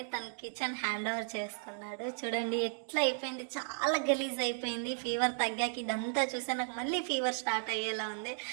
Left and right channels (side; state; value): left; silent; digital silence